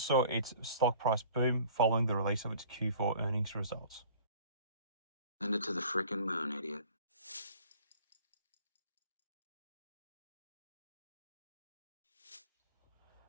saw its stock price boom following the release of its Q4 earnings results. Send it to the frickin' moon, idiot.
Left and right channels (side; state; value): both; inverted; correlation -0.48